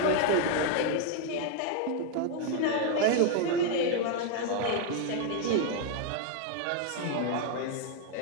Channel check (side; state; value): both; different; correlation 0.00